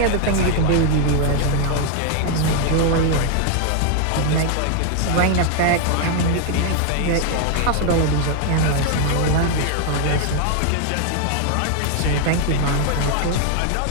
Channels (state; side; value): different; both; correlation 0.00